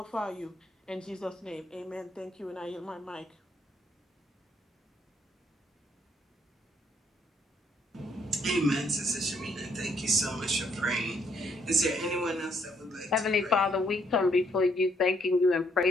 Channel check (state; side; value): normal; both; correlation 0.70